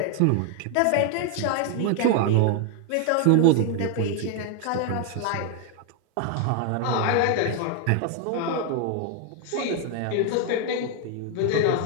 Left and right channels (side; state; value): both; different; correlation 0.01